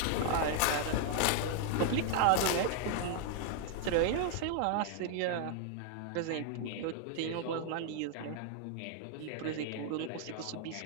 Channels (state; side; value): different; both; correlation 0.00